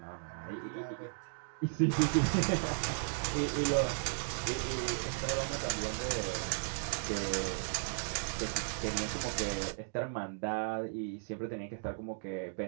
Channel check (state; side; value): silent; left; digital silence